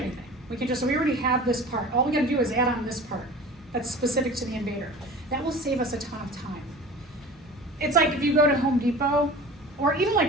We already have this part. All we gotta do is add on this part that's specific to the invader. That will save us a ton of time. It's like if you go to Home Depot, or even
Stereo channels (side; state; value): both; normal; correlation 0.38